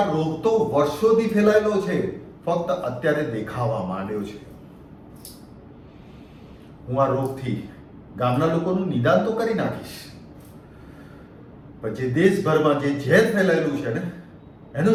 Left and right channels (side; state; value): both; identical; correlation 1.00